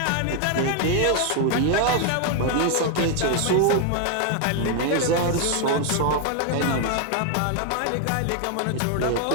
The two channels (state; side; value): different; both; correlation 0.01